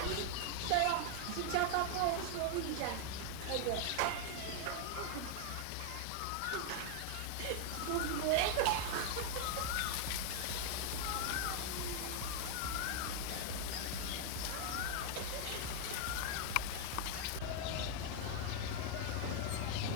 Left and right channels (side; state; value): both; different; correlation 0.00